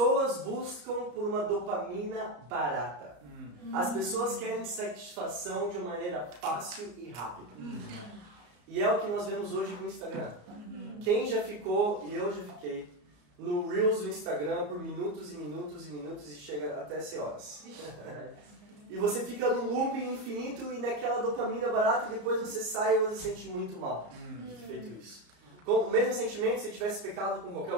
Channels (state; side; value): late; left; 34 ms